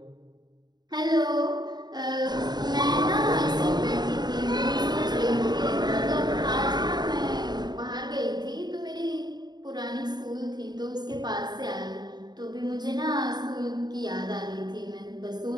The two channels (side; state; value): left; late; 0.20 ms